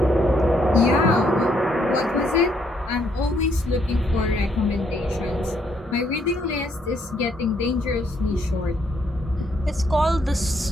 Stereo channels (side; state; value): both; normal; correlation 0.71